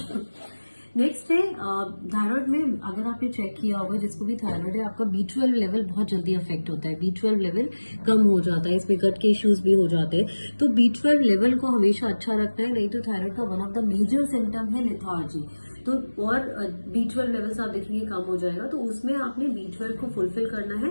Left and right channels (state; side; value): inverted; both; correlation -1.00